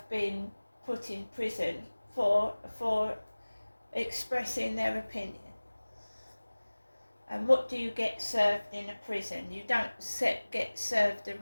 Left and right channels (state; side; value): inverted; both; correlation -1.00